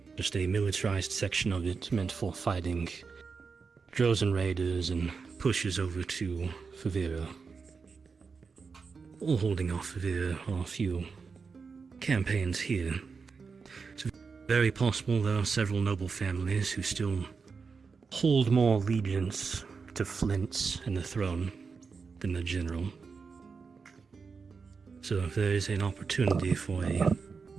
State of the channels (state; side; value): quieter; left; 5.1 dB